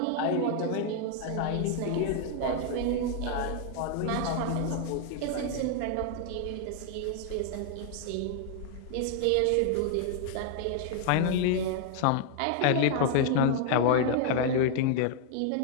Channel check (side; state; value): both; different; correlation 0.00